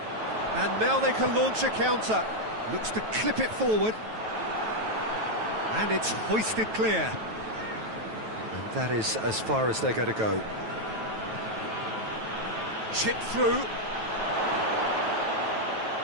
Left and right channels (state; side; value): late; left; 9.2 ms